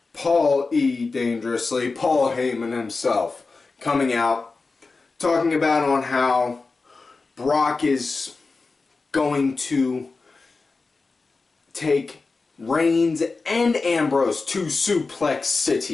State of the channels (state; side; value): quieter; right; 4.0 dB